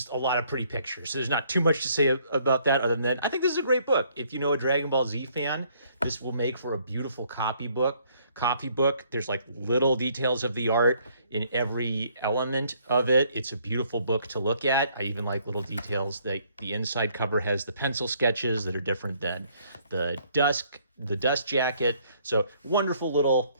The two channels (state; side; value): inverted; both; correlation -0.65